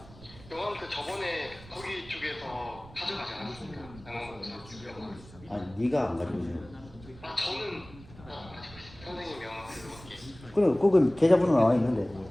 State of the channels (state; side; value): noise; right; rumble, 19 dB below the sound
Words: 영화 그 저번에 거기 쪽에서 가져가지 않았습니까? 아니 네가 안 가지고 있어. 아 저는 가지고 있습니다. 선생님 명함으로 이렇게. 그럼 거기 계좌번호 나와 있는데.